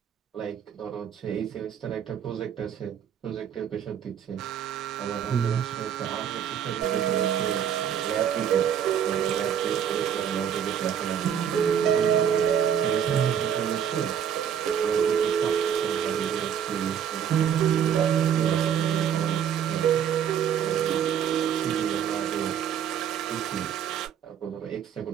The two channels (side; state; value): left; quieter; 8.7 dB